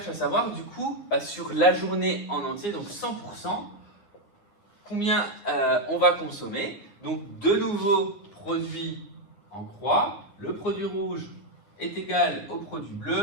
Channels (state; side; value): late; right; 9.7 ms